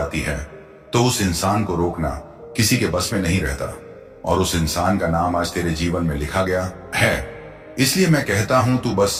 है तो उस इंसान को रोकना किसी के बस में नहीं रहता, और उस इंसान का नाम आज तेरे जीवन में लिखा गया है। इसलिए मैं कहता हूं, तू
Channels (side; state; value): both; identical; correlation 1.00